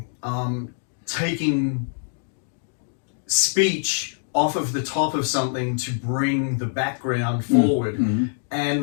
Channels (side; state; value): right; silent; digital silence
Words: Taking speech off of the top of something to bring the background forward,